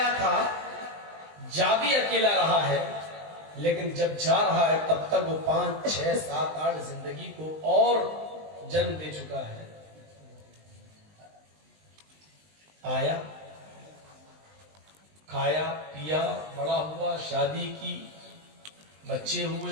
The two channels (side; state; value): left; late; 19 ms